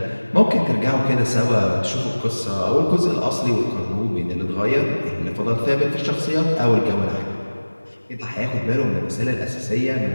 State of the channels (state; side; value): inverted; both; correlation -1.00